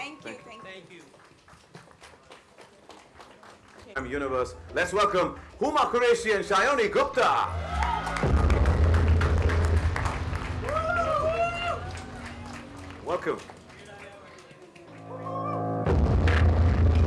you. Thank you. Universe. Let's welcome Huma Qureshi and Sayani Gupta. Welcome.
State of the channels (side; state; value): both; identical; correlation 1.00